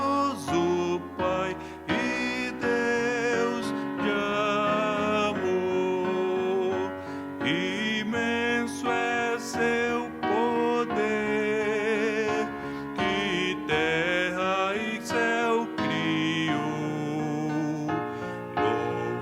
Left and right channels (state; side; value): identical; both; correlation 1.00